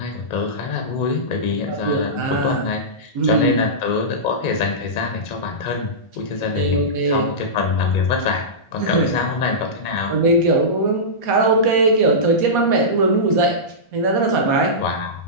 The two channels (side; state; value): right; late; 1.4 ms